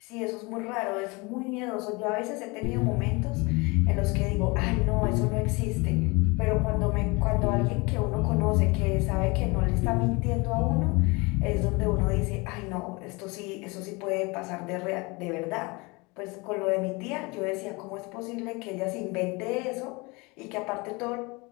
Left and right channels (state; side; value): quieter; right; 26.4 dB